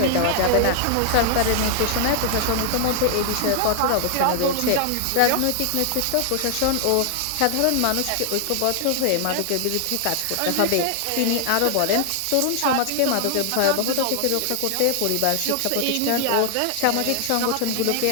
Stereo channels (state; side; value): different; both; correlation 0.00